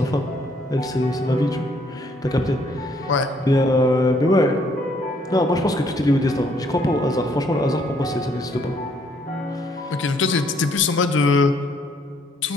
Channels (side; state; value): both; normal; correlation 0.67